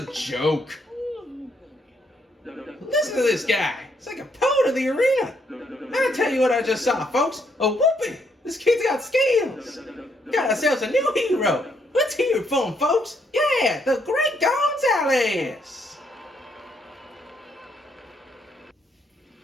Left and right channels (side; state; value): both; normal; correlation 0.73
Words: joke. Listen to this guy. It's like a poet of the arena. I'll tell you what I just saw, folks. A whooping. This kid's got skills. Got ourselves a new hero. Let's hear it for him, folks. Yeah, the Great Gonzalez.